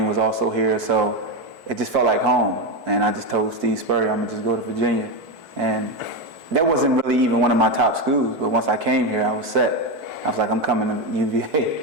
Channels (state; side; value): late; left; 4.6 ms